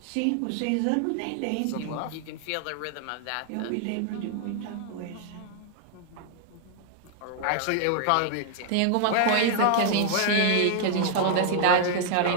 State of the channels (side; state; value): both; different; correlation 0.00